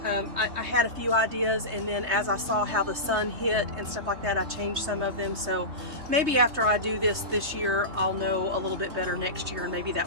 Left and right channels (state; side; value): late; left; 3.3 ms